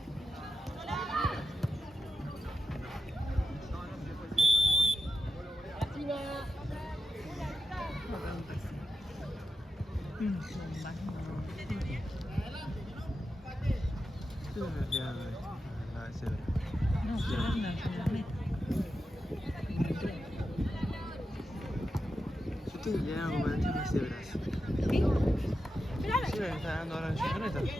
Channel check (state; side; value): normal; both; correlation 0.89